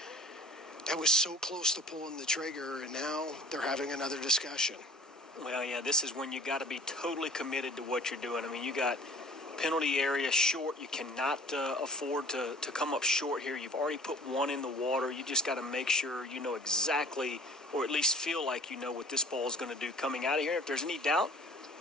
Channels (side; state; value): both; normal; correlation 0.44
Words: that was so close to pulling the trigger, and now they're having another discussion. Well, yeah, this is when you got to be totally committed to what you're doing. I mean, you got penalty area short. You cannot afford to come up short here. You've already put one in the water. You just got to make sure you know exactly, or at least feel like you know what this ball is going to do coming out of here. If there's any doubt,